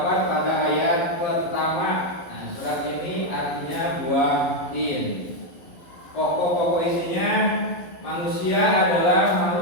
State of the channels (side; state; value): right; late; 11 ms